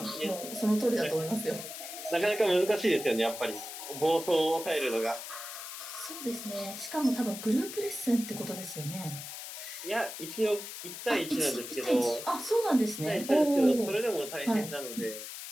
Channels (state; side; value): noise; left; hiss, 9 dB below the sound